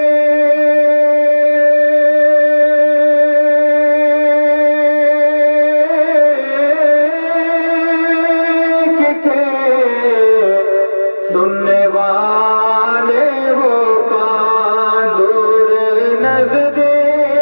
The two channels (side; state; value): both; inverted; correlation -1.00